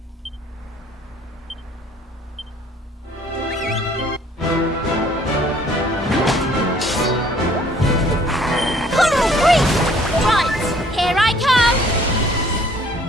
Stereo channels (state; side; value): normal; both; correlation 0.58